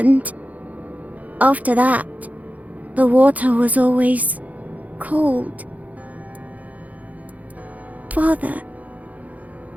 After that, the water was always cold.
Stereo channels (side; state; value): left; late; 0.075 ms